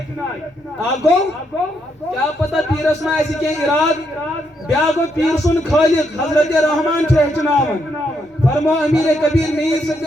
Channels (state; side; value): normal; both; correlation 0.77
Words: گوٚو کیٛاہ پتہ پیٖرس ما آسہِ کینٛہہ اِرادٕ بیٛاکھ گوٚو پیٖر سُنٛد خٲلق حضرت رحمان چھُ ہیٚچھناوان فرمو امیر کبیر میٖر